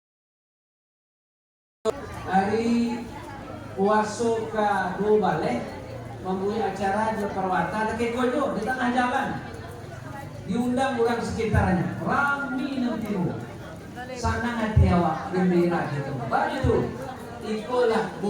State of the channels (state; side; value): identical; both; correlation 1.00